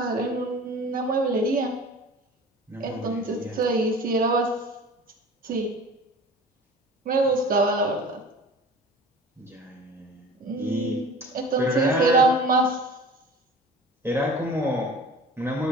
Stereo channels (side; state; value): both; normal; correlation 0.41